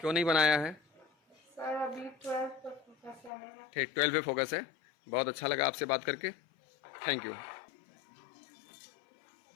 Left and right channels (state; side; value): drops out; right; at 3.3 s